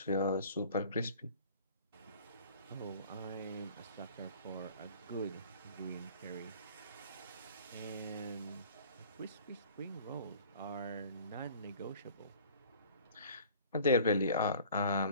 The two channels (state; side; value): inverted; both; correlation -0.47